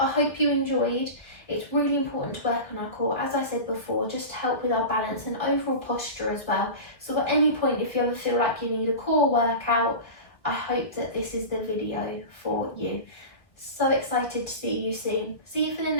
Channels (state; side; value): late; right; 1.4 ms